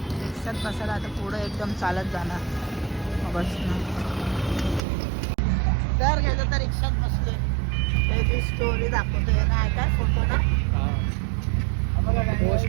बसायला, आता पुढे एकदम चालत जाणार बस. तर गेलो तर रिक्षात बसलोय, त्याची स्टोरी दाखवतोय ना, काय फोटो ना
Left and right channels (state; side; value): drops out; left; at 4.8 s